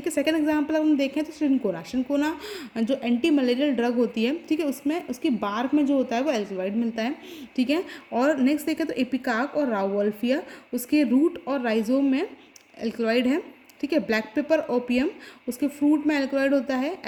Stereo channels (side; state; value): both; identical; correlation 1.00